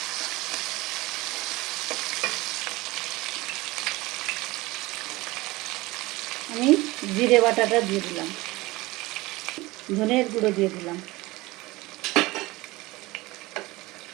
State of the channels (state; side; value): quieter; left; 20.7 dB